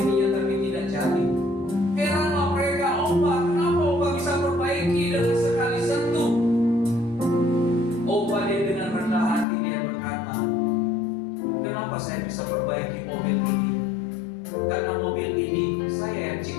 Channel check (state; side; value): drops out; right; at 9.5 s